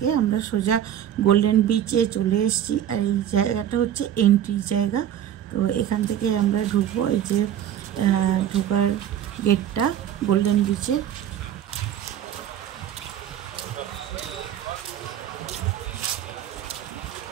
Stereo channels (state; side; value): quieter; left; 10.5 dB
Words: আমরা সোজা গোল্ডেন বিচে চলে এসেছি। আর এই জায়গাটা হচ্ছে এন্ট্রি জায়গা। তো এখান থেকে আমরা ঢুকবো, এই যে ঢোকার গেটটা গোল্ডেন বিচে।